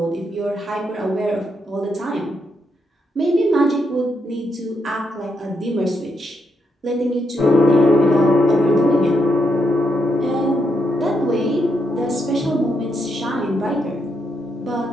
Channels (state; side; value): normal; both; correlation 0.80